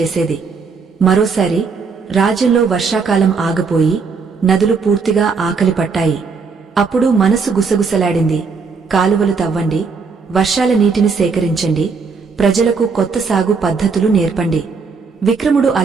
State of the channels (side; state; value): left; quieter; 5.0 dB